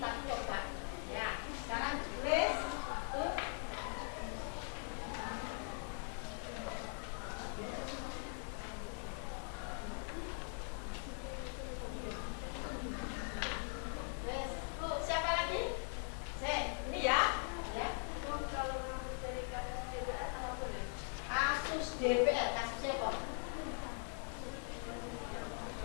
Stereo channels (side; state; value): right; silent; 50 dB below the other